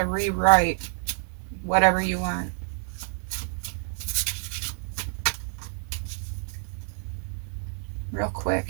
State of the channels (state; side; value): silent; left; digital silence